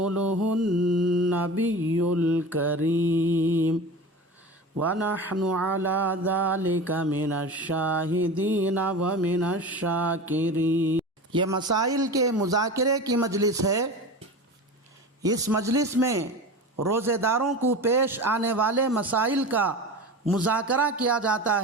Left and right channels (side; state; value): both; normal; correlation 0.31